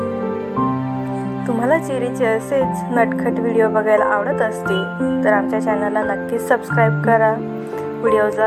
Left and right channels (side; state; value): both; identical; correlation 1.00